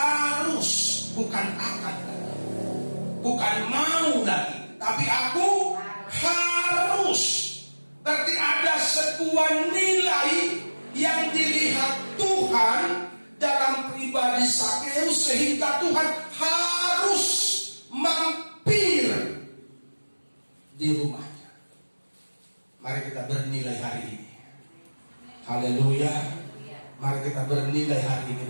bukan akan lagi, bukan mau lagi, tapi aku harus. Berarti ada sebuah nilai yang dilihat Tuhan dalam pribadi Sakeus, sehingga Tuhan harus mampir di rumahnya. Mari kita bernilai hari ini. Haleluya. Mari kita bernilai hari ini.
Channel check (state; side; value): inverted; both; correlation -1.00